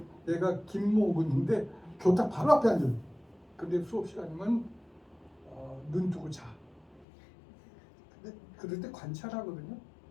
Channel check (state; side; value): drops out; right; at 7.1 s